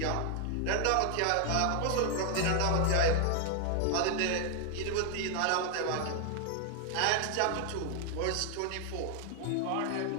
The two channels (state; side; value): different; both; correlation 0.00